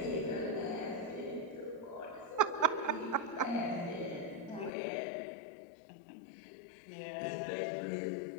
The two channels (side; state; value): right; drops out; at 4.7 s